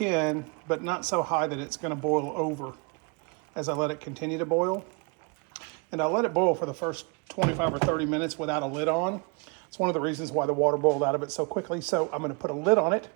but not so high that it's gonna boil over as I let it continue to boil. And I'll let it boil for the first 25 or 30 minutes without a lid on. It's one of the reasons why the water boiled out of it so quickly. So I'm gonna put a lid on it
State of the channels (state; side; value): quieter; left; 32.6 dB